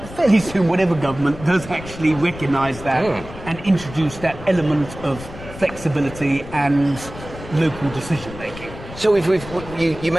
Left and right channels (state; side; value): noise; left; rumble, 14 dB below the sound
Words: fairly soon whatever government, does actually recognise that and introduce that element of flexibility and local decision-making. So you